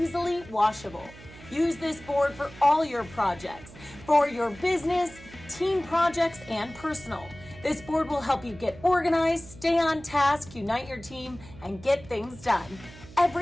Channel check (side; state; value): right; noise; hum, 19 dB below the sound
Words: washable. Use this board for all your projects, for your business, team projects, and personal. This board will help you get organized, stay on task, unite your team, and get things done.